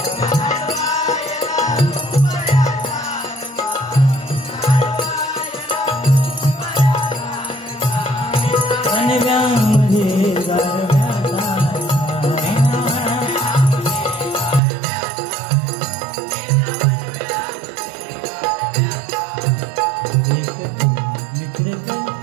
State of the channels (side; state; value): left; drops out; at 14.6 s